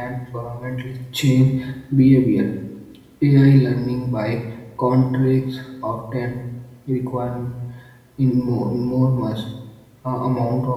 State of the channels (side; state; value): both; identical; correlation 1.00